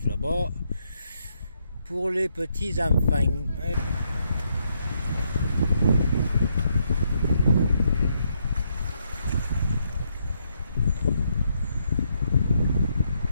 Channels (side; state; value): both; inverted; correlation -0.76